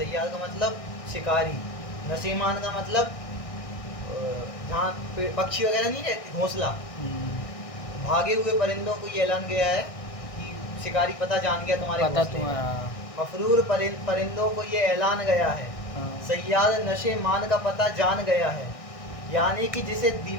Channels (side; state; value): right; late; 1.6 ms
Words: का मतलब शिकारी, नशे मान का मतलब जहाँ पक्षी वगैरह नहीं रहती, घोंसला। भागे हुए परिंदों को ये ऐलान गया है कि शिकारी पता जान गया तुम्हारे पता घोंसले का। तुम्हारा। मफरूर परिंदों को ये ऐलान गया है, सैयाद नशे मान का पता जान गया है, यानी कि जिसे